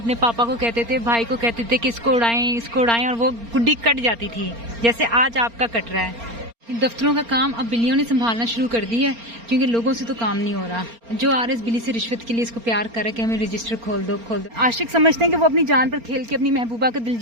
पापा को कहते थे, भाई को कहते थे कि इसको उड़ाएं और वो गुड्डी कट जाती थी, जैसे आज आपका कट रहा है। दफ्तरों का काम अब बिल्लियों ने संभालना शुरू कर दिया है, क्योंकि लोगों से तो काम नहीं हो रहा। जो आ रहे इस बिल्ली से रिश्वत के लिए इसको प्यार कर रहा है कि हमें रजिस्टर खोल दो। आशिक समझते हैं कि वो अपनी जान पर खेल के अपनी महबूबा का दिल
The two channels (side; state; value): left; late; 4.3 ms